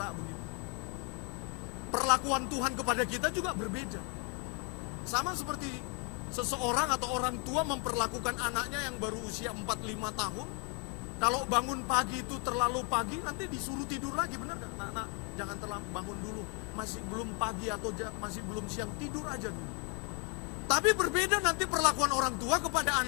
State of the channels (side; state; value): right; quieter; 35.3 dB